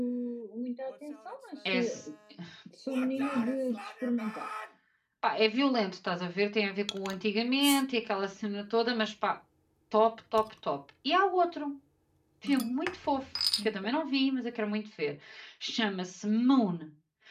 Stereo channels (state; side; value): identical; both; correlation 1.00